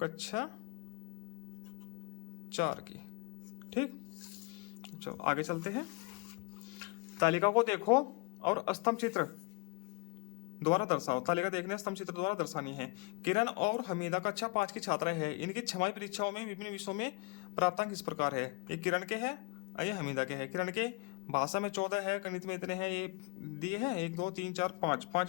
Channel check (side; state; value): right; quieter; 31.6 dB